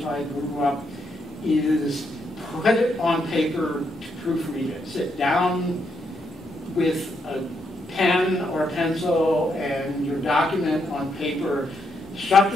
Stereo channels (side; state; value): both; normal; correlation 0.78